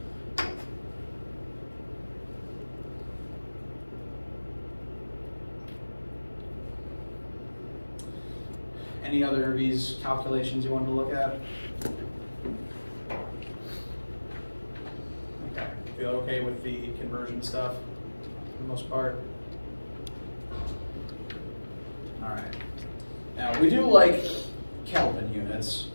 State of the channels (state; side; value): inverted; both; correlation -1.00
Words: Any other of these calculations you wanted to look at? Okay. Feel okay with the conversion stuff for the most part? All right. Now, we do like Kelvin units